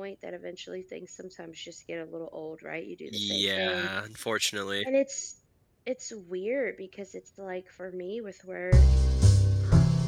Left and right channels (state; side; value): identical; both; correlation 1.00